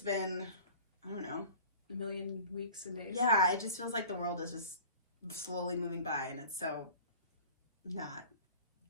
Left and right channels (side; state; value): both; inverted; correlation -0.43